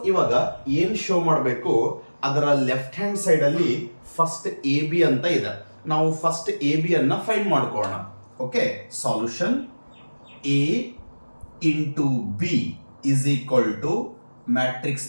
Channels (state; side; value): inverted; both; correlation -1.00